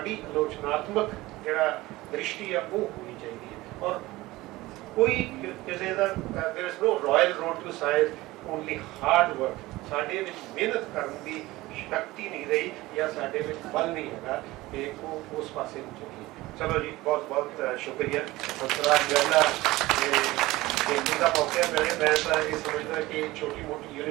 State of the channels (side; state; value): left; quieter; 18.9 dB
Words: ਆਲੋਚਨਾਤਮਕ ਜਿਹੜਾ ਦ੍ਰਿਸ਼ਟੀ ਆ ਉਹ ਹੋਣੀ ਚਾਹੀਦੀ ਹੈ। ਔਰ ਕੋਈ ਕਿਸੇ ਦਾ there is no royal road to science, only hard work। ਸਾਡੇ ਵਿੱਚ ਮਿਹਨਤ ਕਰਨ ਦੀ ਸ਼ਕਤੀ ਨਹੀਂ ਰਹੀ ਜਾਂ ਸਾਡੇ ਵਿੱਚ ਬਲ ਨਹੀਂ ਹੈਗਾ ਕਿ ਉਹ ਉਸ ਪਾਸੇ ਨੂੰ ਚੱਲੀਏ। ਚਲੋ ਜੀ, ਬਹੁਤ ਬਹੁਤ ਸ਼ੁਕਰੀਆ। ਹੰਸਰਾਜ ਜੈਲਾ ਦਾ ਮੌਕਾ ਮਿਲੇ। ਮੈਂ ਤਾਂ ਇਹ ਸਮਝਦਾ ਕਿ ਛੋਟੀ ਮੋਟੀ